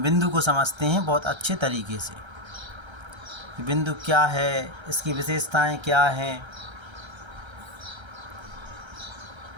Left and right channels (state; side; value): late; left; 1.3 ms